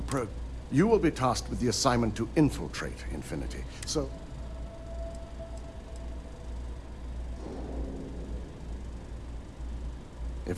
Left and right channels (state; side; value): identical; both; correlation 1.00